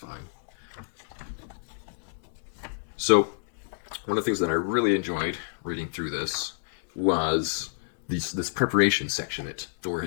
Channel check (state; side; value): silent; right; 59 dB below the other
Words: So, one of the things that I really enjoyed reading through this was this preparation section that Thor